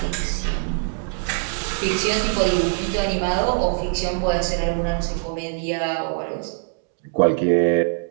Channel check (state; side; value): silent; left; 57 dB below the other